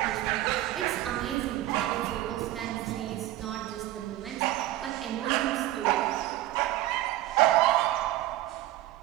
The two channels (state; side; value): quieter; left; 14.9 dB